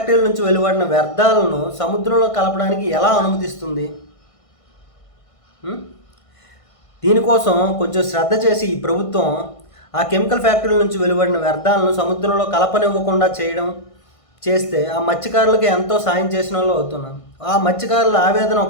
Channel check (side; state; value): right; late; 1.5 ms